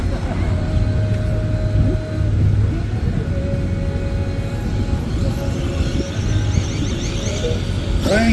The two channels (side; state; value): both; identical; correlation 1.00